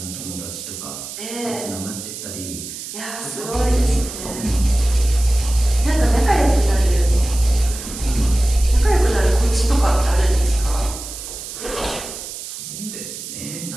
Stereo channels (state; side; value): noise; right; hiss, 10 dB below the sound